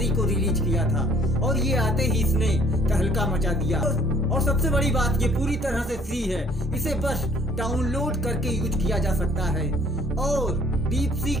को रिलीज किया था और ये आते ही इसने तहलका मचा दिया। और सबसे बड़ी बात, ये पूरी तरह से फ्री है, इसे बस डाउनलोड करके यूज किया जा सकता है। और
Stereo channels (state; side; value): normal; both; correlation 0.59